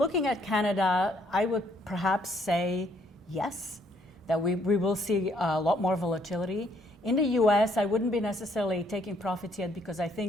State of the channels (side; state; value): both; normal; correlation 0.68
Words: at Canada, I would perhaps say yes, that we will see a lot more volatility. In the US, I wouldn't be necessarily taking profits yet because I